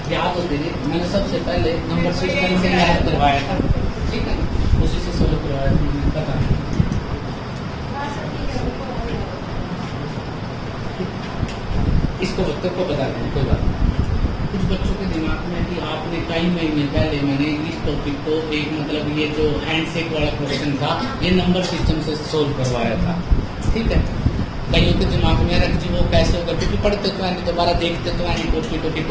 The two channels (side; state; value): both; identical; correlation 1.00